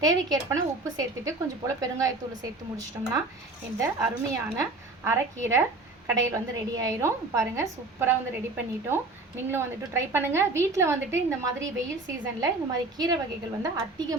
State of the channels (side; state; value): left; quieter; 3.1 dB